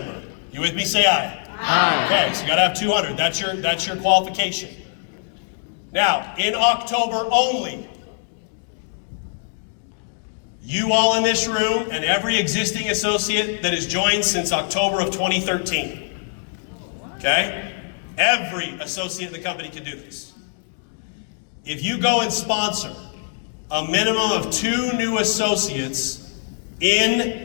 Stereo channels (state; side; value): silent; right; digital silence